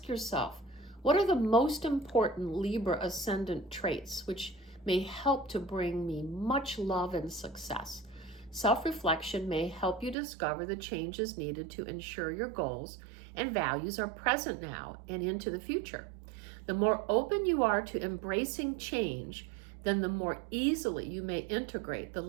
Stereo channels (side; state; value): left; drops out; at 10.2 s